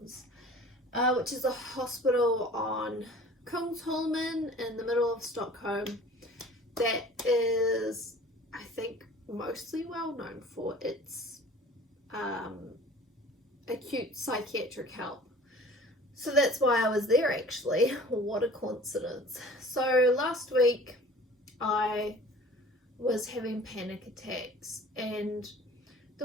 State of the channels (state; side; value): normal; both; correlation 0.46